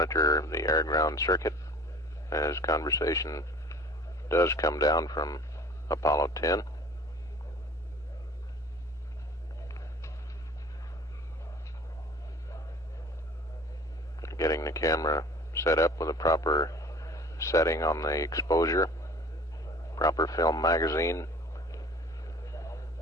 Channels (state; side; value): normal; both; correlation 0.46